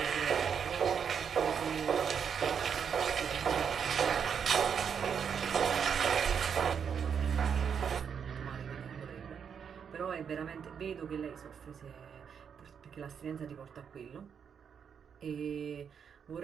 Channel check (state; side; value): quieter; left; 7.2 dB